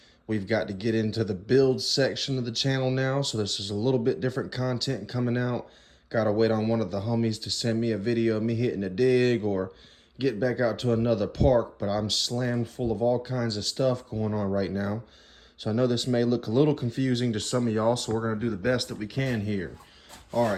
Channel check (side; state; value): both; identical; correlation 1.00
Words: We've got to get into the build section of the channel now, so this is a little bit different content coming out. Got to wait on one of the homies to send me a video of me hitting a dig or get back out to another park, but I'm slammed full of all kinds of stuff going on right now. So I know this may look a little confusing to some of y'all, so we're going to do the best that we can here. All